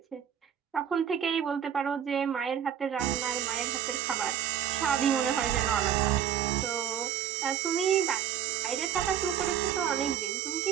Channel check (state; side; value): quieter; left; 9.1 dB